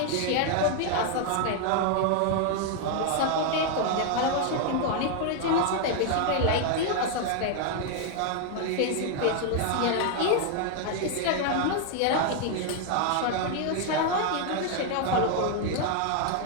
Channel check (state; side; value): different; both; correlation 0.00